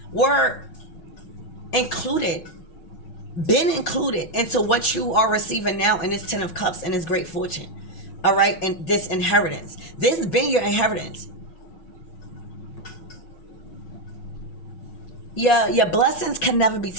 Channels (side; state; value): right; late; 5.4 ms